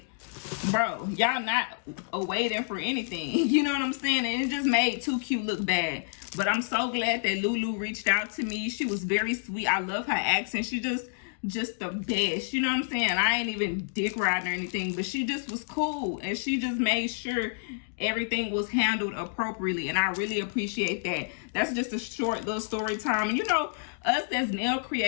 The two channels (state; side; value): silent; right; digital silence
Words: bro, y'all not awaiting for anything. You know what I'm saying? And it just made Too Cute look bad. But I'm so glad that Lulu reached out to me. She was very sweet. I love her accent. She just the best. You know what I'm saying? I ain't even dick riding or anything, but she just was cool. And she just made sure everything was handled appropriately. And I really appreciate that. That's just a short little story time. And you know, us as nail